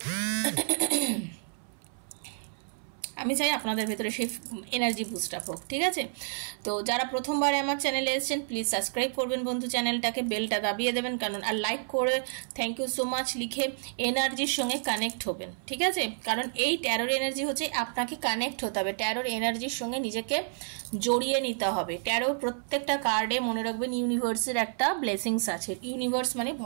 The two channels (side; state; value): left; silent; 58 dB below the other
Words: আমি চাই আপনাদের ভেতরে সেই এনার্জি বুস্ট আপ হোক। ঠিক আছে, তো যারা প্রথমবার আমার চ্যানেলে এসেছেন, প্লিজ সাবস্ক্রাইব করবেন বন্ধু চ্যানেলটাকে, বেলটা দাবিয়ে দেবেন, কারণ আর লাইক করে থ্যাংক ইউ সো মাচ লিখে এনার্জির সঙ্গে কানেক্ট হবেন। ঠিক আছে, কারণ এই ট্যারোর এনার্জি হচ্ছে আপনাকে কানেক্ট হতে হবে, ট্যারোর এনার্জির সঙ্গে নিজেকে জড়িয়ে নিতে হবে। ট্যারো প্রত্যেকটা কার্ডে মনে রাখবেন ইউনিভার্সের একটা ব্লেসিংস আছে। ইউনিভার্স মানে